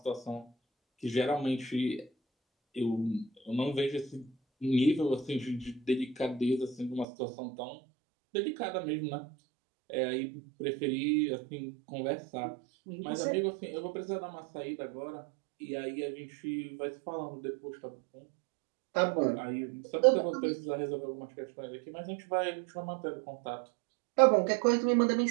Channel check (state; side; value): drops out; left; at 7.1 s